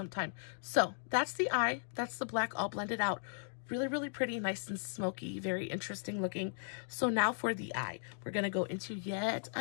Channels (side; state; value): right; silent; digital silence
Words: So that's the eye. That's the black all blended out. Really, really pretty, nice and smoky, very interesting looking. So now for the eye, we're going to go into yet